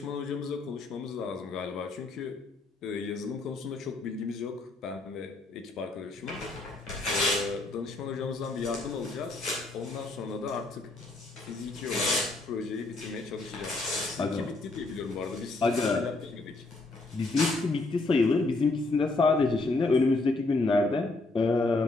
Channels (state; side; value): quieter; right; 3.2 dB